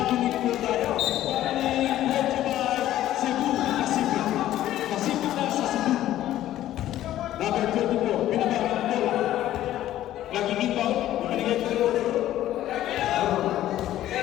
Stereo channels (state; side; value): quieter; right; 13.2 dB